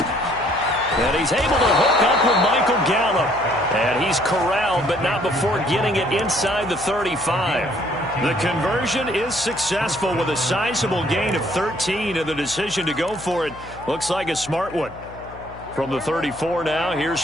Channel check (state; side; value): noise; left; hum, 17 dB below the sound